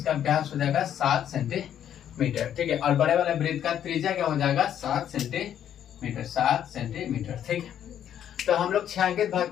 व्यास हो जाएगा 7 सेंटीमीटर। ठीक है, और बड़े वाले वृत्त का त्रिज्या क्या हो जाएगा, 7 सेंटीमीटर। ठीक है, तो हम लोग छायांकित भाग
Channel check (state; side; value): quieter; right; 10.0 dB